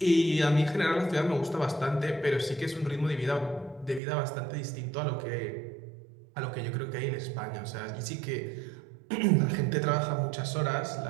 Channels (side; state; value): left; drops out; at 4.0 s